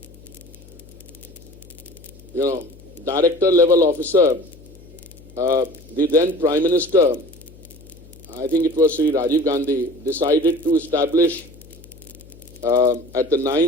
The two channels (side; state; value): left; noise; hum, 22 dB below the sound